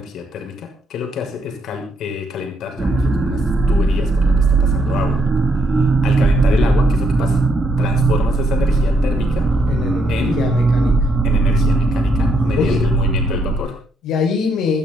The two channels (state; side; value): normal; both; correlation 0.74